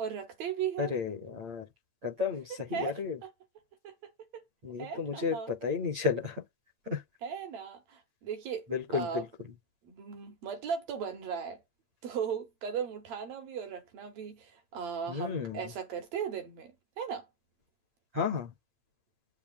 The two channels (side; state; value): left; late; 8.8 ms